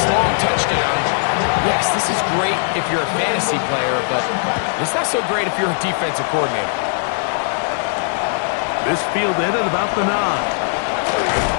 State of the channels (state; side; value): silent; right; digital silence